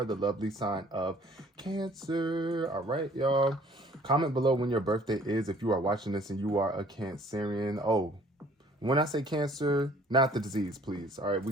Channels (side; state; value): both; normal; correlation 0.56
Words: the lovely sign of Cancer. All right, y'all. Comment below when your birthday is if you are watching this and you are a Cancerian. Oh, when I say Cancer, not the disease, please. All right,